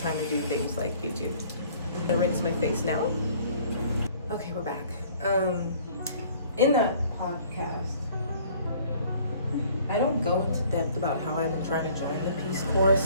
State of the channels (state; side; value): inverted; both; correlation -0.54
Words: to do things like YouTube. I'm gonna rinse my face now. Okay, we're back. In that podcast, I don't go into depth about how I've been trying to join the Peace Corps